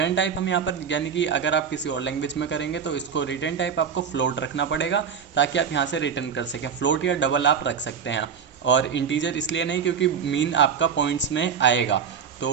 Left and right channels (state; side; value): quieter; left; 7.1 dB